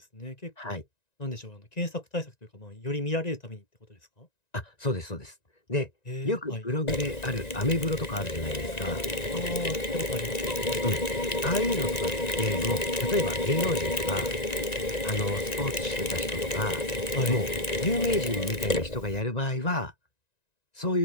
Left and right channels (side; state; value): right; late; 1.9 ms